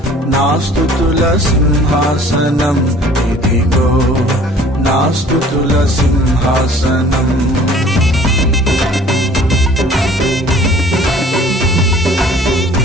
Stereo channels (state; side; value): normal; both; correlation 0.51